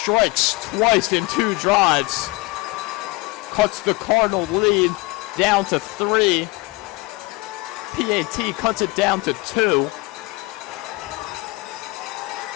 twice in 2 drives. Cuts the Cardinal lead down to 3. PAT cuts it down to 2.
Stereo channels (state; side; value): quieter; right; 23.3 dB